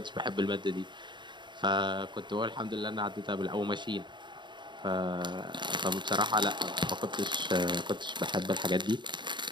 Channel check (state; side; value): late; left; 0.22 ms